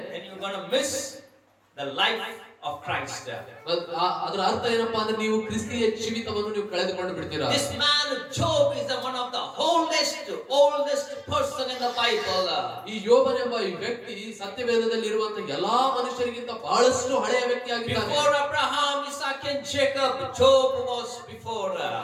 then you're going to miss the life of Christ. ಅದರ ಅರ್ಥ ಏನಪ್ಪಾ ಅಂದ್ರೆ ನೀವು ಕ್ರಿಸ್ತಿಯ ಜೀವಿತವನ್ನು ನೀವು ಕಳೆದುಕೊಂಡು ಬಿಡ್ತೀರಾ. This man Job is one of the oldest person in the Bible. ಈ ಯೋಬನೆಂಬ ಈ ವ್ಯಕ್ತಿ ಸತ್ಯವೇದದಲ್ಲಿ ಇರುವಂತಹ ಎಲ್ಲಾ ಮನುಷ್ಯರಿಗಿಂತ ಬಹಳಷ್ಟು ಹಳೆಯ ವ್ಯಕ್ತಿಯಾಗಿದ್ದಾನೆ. Before Abraham, Isaac and Jacob, Job was before.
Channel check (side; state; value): both; identical; correlation 1.00